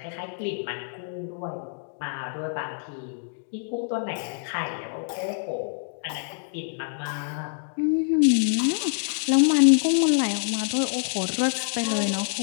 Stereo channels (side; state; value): right; silent; 61 dB below the other